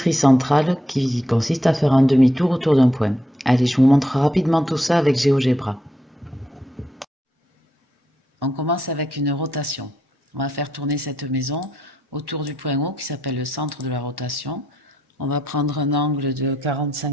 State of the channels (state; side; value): normal; both; correlation 0.79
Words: centrale qui consiste à faire un demi-tour autour d'un point. Allez, je vous montre rapidement tout ça avec GeoGebra. On commence avec une rotation. On va faire tourner cette maison autour du point haut qui s'appelle le centre de la rotation. On va prendre un angle de